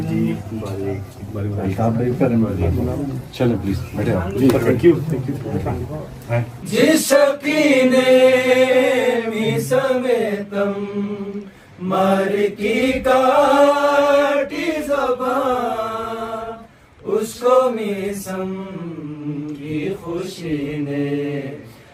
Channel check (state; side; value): identical; both; correlation 1.00